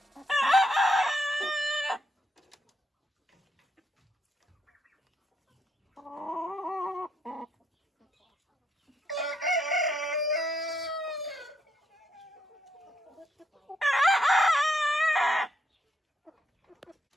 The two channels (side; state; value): both; normal; correlation 0.77